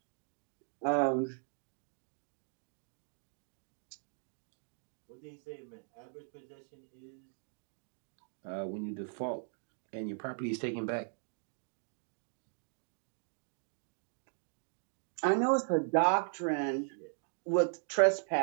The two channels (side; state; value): left; silent; digital silence